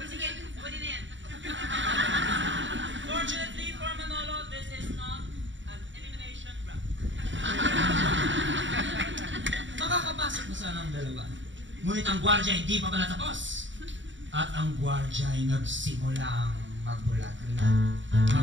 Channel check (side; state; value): left; late; 0.55 ms